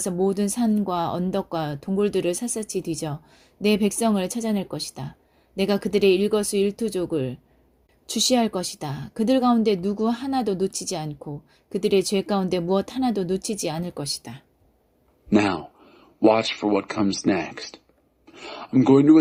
모든 산과 언덕과 동굴들을 샅샅이 뒤져 내 백성을 찾아낼 것이다. 내가 그들의 일거수일투족을 주시할 것이다. 그들 가운데 누구 하나도 놓치지 않고 그들의 죄 가운데 무엇 하나도 놓치지 않을 것이다. Now, watch for what comes next. I'm going to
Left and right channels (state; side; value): identical; both; correlation 1.00